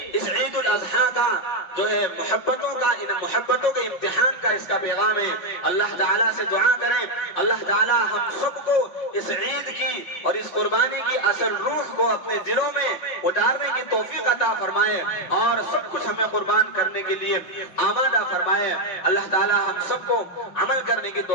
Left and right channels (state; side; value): late; right; 5.6 ms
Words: اس عید الاضحیٰ کا جو ہے محبتوں کا، ان محبتوں کے امتحان کا اس کا پیغام ہے۔ اللہ تعالیٰ سے دعا کریں اللہ تعالیٰ ہم سب کو اس عید کی اور اس قربانی کی اصل روح کو اپنے دلوں میں اتارنے کی توفیق عطا فرمائے اور سب کچھ ہمیں قربان کرنے کے لیے آمادہ فرمائے۔ اللہ تعالیٰ ہم سب کو عمل کرنے کی